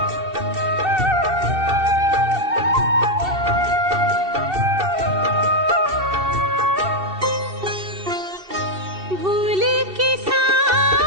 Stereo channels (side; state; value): left; late; 2.7 ms